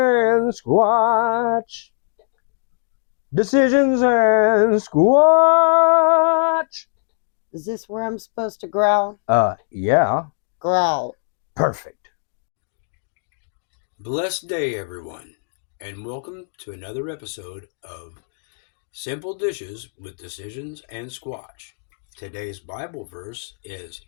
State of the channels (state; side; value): silent; right; digital silence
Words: Squatch. Decisions and Squatch. Is this where I'm supposed to growl? Yeah. Growl. Perfect. Blessed day, everyone, and welcome to another episode of Simple Dishes with Decisions and Squatch. Today's Bible verse is